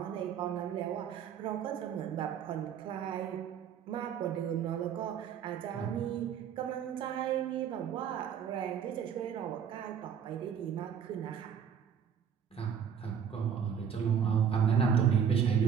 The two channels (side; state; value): left; quieter; 7.9 dB